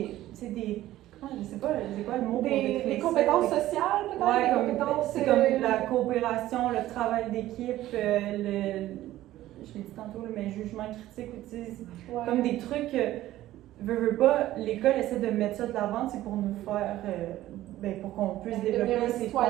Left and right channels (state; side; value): quieter; left; 14.7 dB